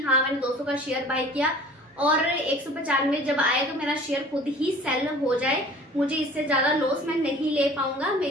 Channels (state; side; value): normal; both; correlation 0.46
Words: हाँ मैंने 200 का शेयर बाय किया और 195 जब आए तो मेरा शेयर खुद ही सेल हो जाए, मुझे इससे ज्यादा लॉस मैं नहीं ले पाऊंगा,